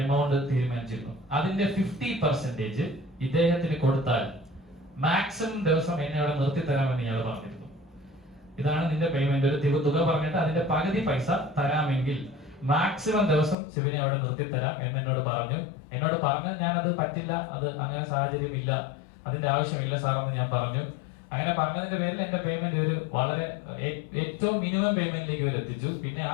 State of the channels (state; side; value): drops out; right; at 13.6 s